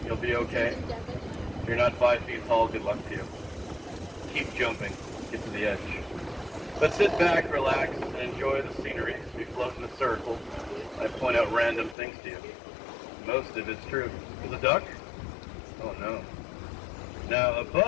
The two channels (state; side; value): drops out; right; at 12.0 s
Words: You'll be okay. If you're not 5 feet tall, good luck to you. Keep jumping. Get to the edge. But sit back, relax, and enjoy the scenery. As we float in a circle, I point out random things to you. Most of it's true. There's a duck? Oh no. Now